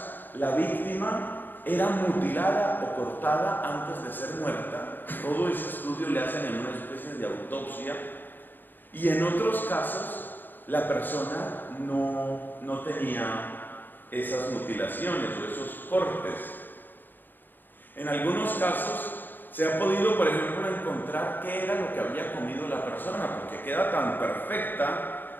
la víctima era mutilada o cortada antes de ser muerta. Todo ese estudio le hacen en una especie de autopsia. Y en otros casos, la persona no tenía esas mutilaciones o esos cortes. En algunos casos, se ha podido, por ejemplo, encontrar qué era lo que había comido la persona, porque queda tan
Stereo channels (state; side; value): late; right; 0.091 ms